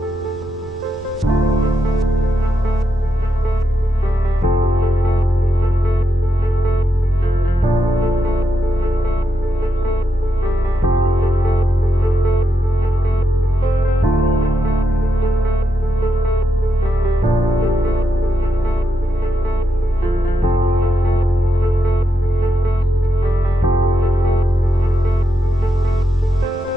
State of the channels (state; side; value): noise; right; rumble, 18 dB below the sound